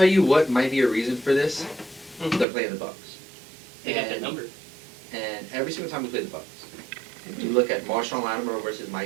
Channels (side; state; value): left; drops out; at 2.5 s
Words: you what might be a reason for this. They're playing the Bucs. They got that number. And every single time we play the Bucs, you look at Marshawn Lattimore versus